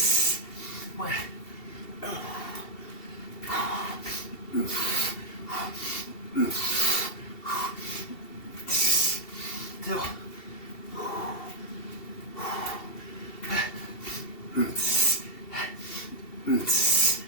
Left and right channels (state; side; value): late; right; 2.7 ms